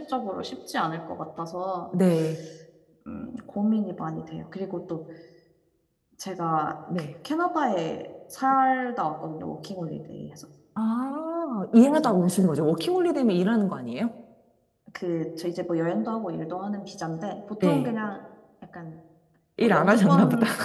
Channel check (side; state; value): both; identical; correlation 1.00